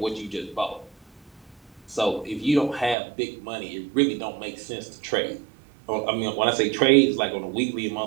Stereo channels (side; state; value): left; drops out; at 3.0 s